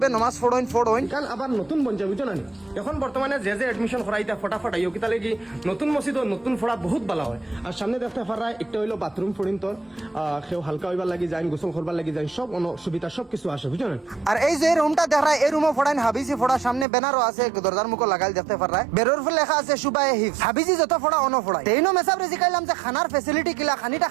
নমাজ পড়ইন কারণ আবার নতুন বঞ্চা বুঝছো না এখন বর্তমানে যে যে এডমিশন করাইতা ফটাফট আইও কিতা লাগি নতুন মসজিদ নতুন ফড়া বহুত ভালো হয়। আর সামনে দেখতে পারা একটা হইলো বাথরুম ফড়িন তোর কেউ হালকা হইবার লাগি যায় গোসল করবার লাগি যায় সব সুবিধা সব কিছু আসে বুঝছো না। আর এই যে রুমটা দেখা এই রুমও ফড়াইন হাবিজি ফড়া সামনে ব্যানারও আছে দরজার মুখো লাগাই দেখতে পারা বেরোর ফলে লেখা আছে সুবায়ে হিফজ হাবিজি যত ফড়া অন ফড়াই তেইনো মেসাব রেজিকাইলাম যে খানার ফ্যাসিলিটি কিলা খানিটা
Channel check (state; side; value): drops out; left; at 16.9 s